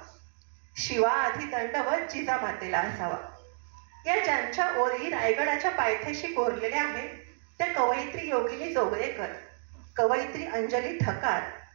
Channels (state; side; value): silent; left; digital silence